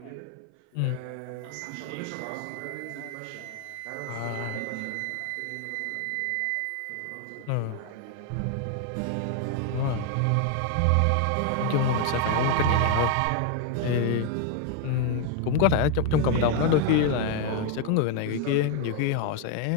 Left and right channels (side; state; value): both; different; correlation 0.01